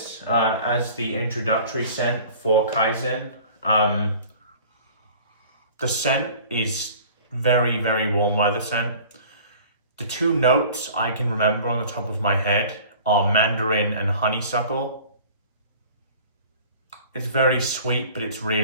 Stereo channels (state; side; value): inverted; both; correlation -0.46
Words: as the introductory scent for Kaizen. The scent is very, very warm weather scent. The two notes I can remember on the top of my head are Mandarin and Honeysuckle. It's very sweet, but it's